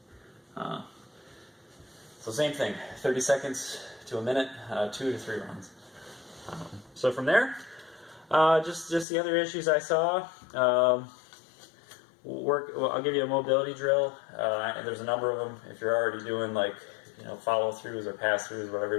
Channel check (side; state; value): right; drops out; at 9.1 s